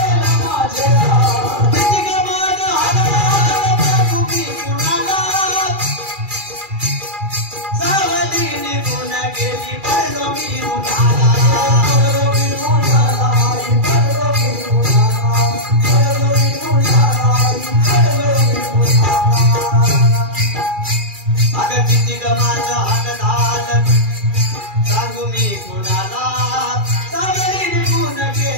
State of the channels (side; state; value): left; late; 2.4 ms